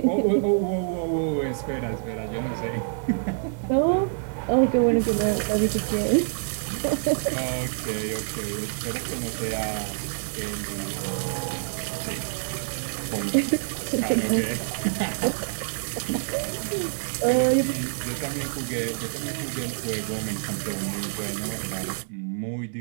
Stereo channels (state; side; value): silent; left; digital silence